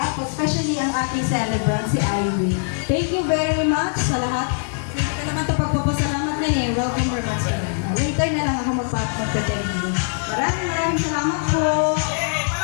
Especially ang ating celebrant, si Ivy. Thank you very much sa lahat. Hindi ka naman ito pagpapasalamat na eh. Welcome very much. Later na lang ako magpapag-thank you. Maraming salamat po. Yay!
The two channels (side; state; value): right; silent; digital silence